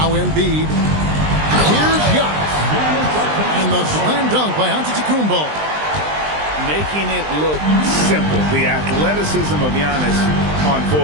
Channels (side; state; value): left; late; 20 ms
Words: Embiid. Here's Giannis. And the slam dunk by Antetokounmpo. Making it look simple. The athleticism of Giannis on